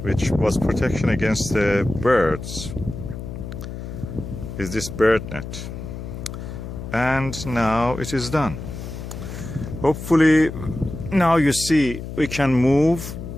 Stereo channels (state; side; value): noise; left; hum, 9 dB below the sound